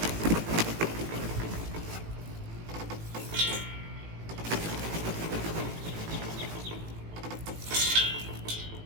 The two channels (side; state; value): left; late; 18 ms